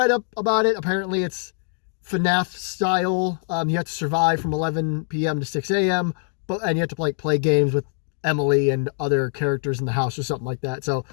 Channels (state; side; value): silent; right; digital silence